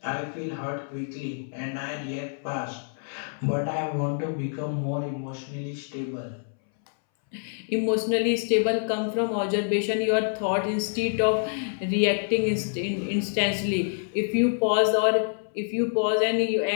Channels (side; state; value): right; silent; 60 dB below the other